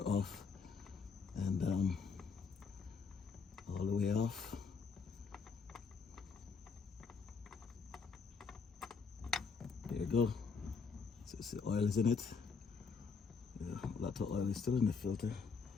and all the way off. There you go. So see, oil is in it. Yeah, a lot of oil is still in the filter.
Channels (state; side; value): quieter; right; 5.3 dB